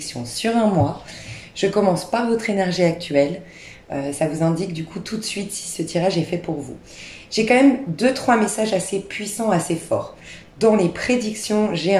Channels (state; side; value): identical; both; correlation 1.00